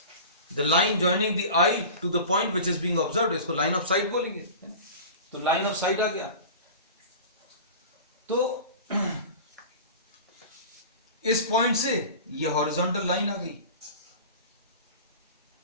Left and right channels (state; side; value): inverted; both; correlation -0.36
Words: the line joining the eye to the point which is being observed, इसको लाइन ऑफ साइट बोलेंगे। तो लाइन ऑफ साइट आ गया। तो इस पॉइंट से ये हॉरिजॉन्टल लाइन आ गई।